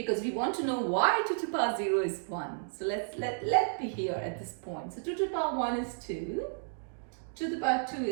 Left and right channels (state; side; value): silent; left; digital silence